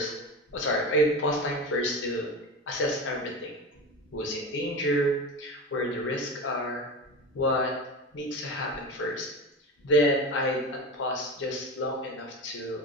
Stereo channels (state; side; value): normal; both; correlation 0.25